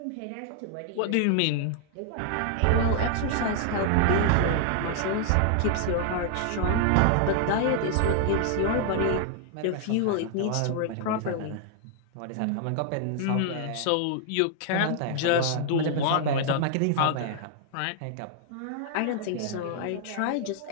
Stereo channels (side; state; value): both; different; correlation 0.00